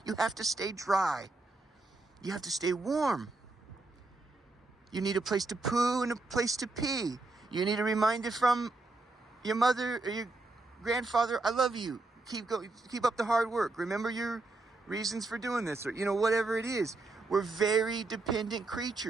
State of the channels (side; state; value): left; quieter; 3.2 dB